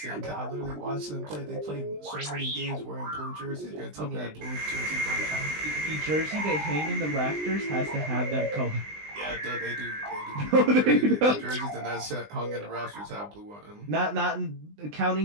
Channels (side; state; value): left; late; 20 ms